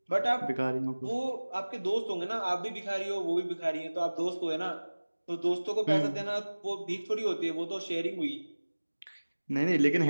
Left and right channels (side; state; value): both; inverted; correlation -1.00